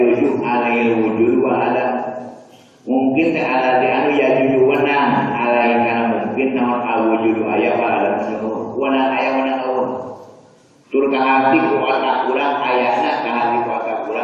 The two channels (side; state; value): both; identical; correlation 1.00